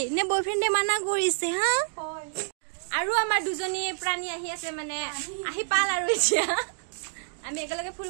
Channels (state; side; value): silent; left; digital silence